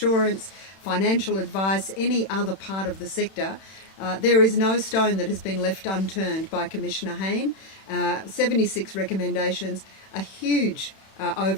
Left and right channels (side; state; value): right; late; 31 ms